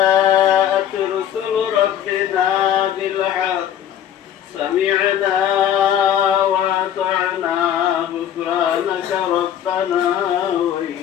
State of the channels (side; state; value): right; quieter; 10.2 dB